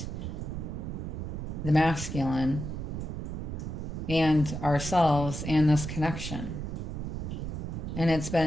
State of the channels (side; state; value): right; noise; rumble, 5 dB below the sound